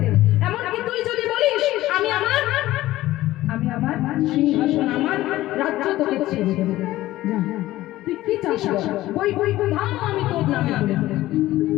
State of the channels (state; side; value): quieter; right; 16.0 dB